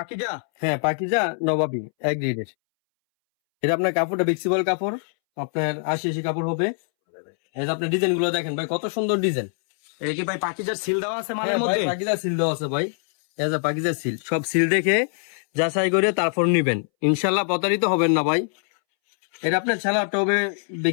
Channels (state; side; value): silent; right; 63 dB below the other